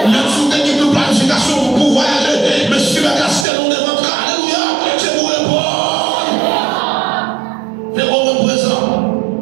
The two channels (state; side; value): drops out; left; at 3.5 s